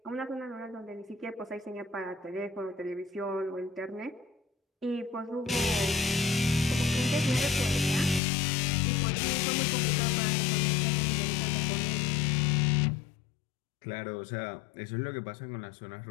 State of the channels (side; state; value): right; drops out; at 8.2 s